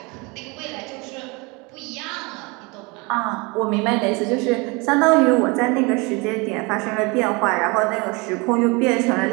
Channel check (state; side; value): quieter; left; 27.4 dB